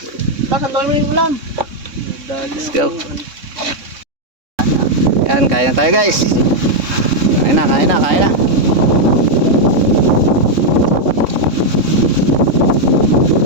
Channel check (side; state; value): left; late; 3.6 ms